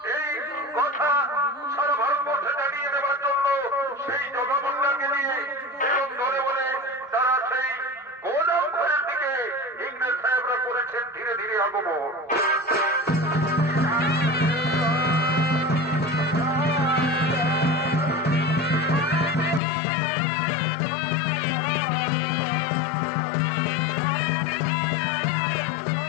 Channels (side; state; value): right; drops out; at 19.6 s